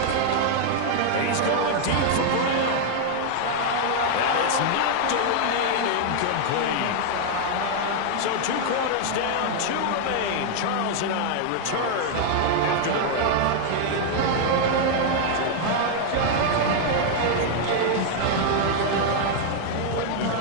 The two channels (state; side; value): different; both; correlation 0.00